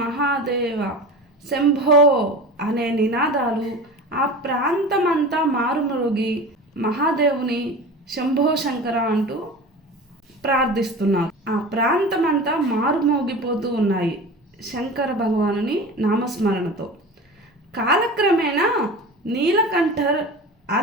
మహాదేవ శంభో అనే నినాదాలు ఆ ప్రాంతమంతా మారుమరుగి మహాదేవుని శంభో శంకర అంటూ ప్రార్థిస్తున్నారు. ఆ ప్రాంతమంతా మారుమోగిపోతూ ఉన్నాయి శంకర భగవానుని నామస్మరణతో. కాలక్రమేణా నీలకంఠర్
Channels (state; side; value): normal; both; correlation 0.33